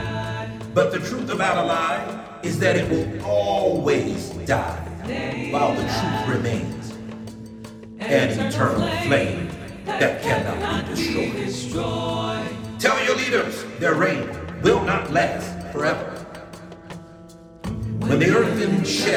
but the truth about a lie is that it will always die while the truth remains. An eternal flame that cannot be destroyed. Tell your leaders their reign will not last forever. When the earthen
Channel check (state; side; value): identical; both; correlation 1.00